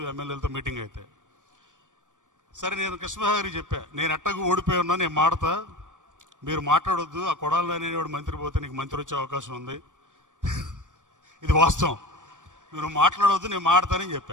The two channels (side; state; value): left; late; 0.87 ms